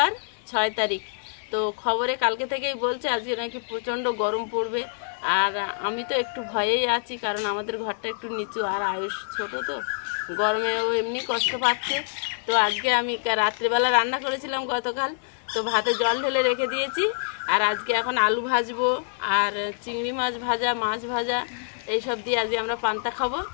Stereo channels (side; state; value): right; silent; 60 dB below the other